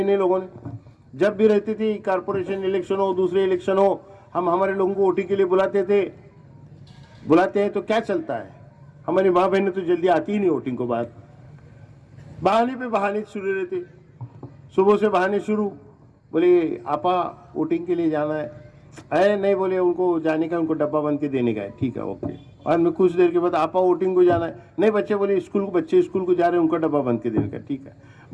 नहीं लोगों ने। जब भी रहती थी कारपोरेशन इलेक्शन हो, दूसरे इलेक्शन हो, हम हमारे लोगों को वोटिंग के लिए बुलाते हैं तो क्या चलता है, हमारी माँ बहनें तो जल्दी आती ही नहीं वोटिंग को। बाद बहाने पे बहाने शुरू रहते, सुबह से बहाने शुरू, बोले आपा वोटिंग के लिए जाना है नहीं, बोले उनको जाने का, उनको डब्बा बन के देने का है, ठीक है ओके। और मैं कुछ देर के बाद आपा वोटिंग को जाना है नहीं, बच्चे बोले बच्चे स्कूल को जा रहे हैं, उनका डब्बा बन के देने का, ठीक है।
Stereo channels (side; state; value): both; identical; correlation 1.00